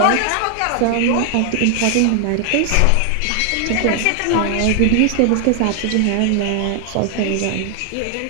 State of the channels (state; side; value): different; both; correlation 0.00